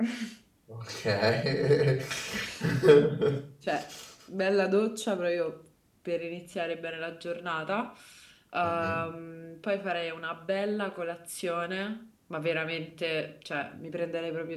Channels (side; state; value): both; identical; correlation 1.00